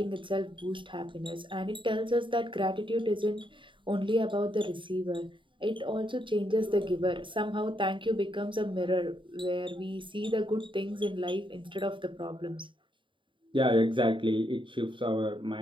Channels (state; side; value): late; left; 0.24 ms